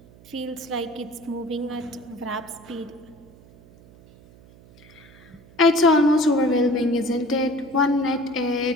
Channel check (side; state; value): right; noise; hum, 24 dB below the sound